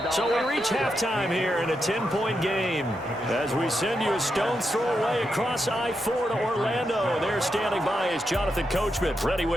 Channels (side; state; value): both; normal; correlation 0.85